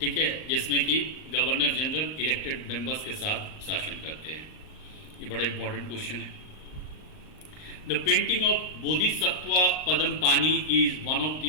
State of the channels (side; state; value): right; late; 39 ms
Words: है, जिसमें कि गवर्नर जनरल इलेक्टेड मेंबर्स के साथ शासन करते हैं। ये बड़ा इंपॉर्टेंट क्वेश्चन है। The painting of Bodhisattva Padampani is one of